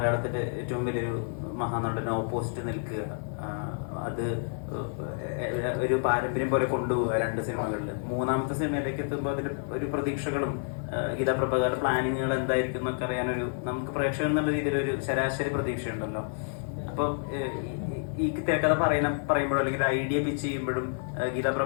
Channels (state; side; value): silent; right; digital silence